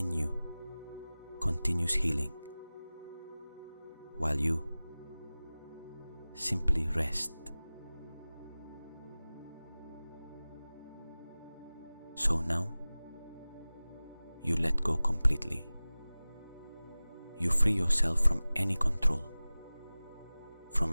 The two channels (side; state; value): both; inverted; correlation -0.98